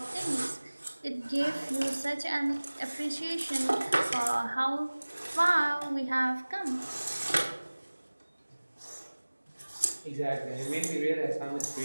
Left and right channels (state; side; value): inverted; both; correlation -1.00